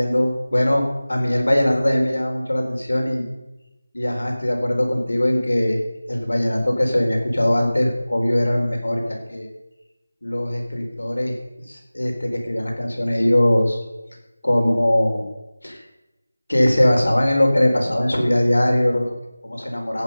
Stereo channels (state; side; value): inverted; both; correlation -0.98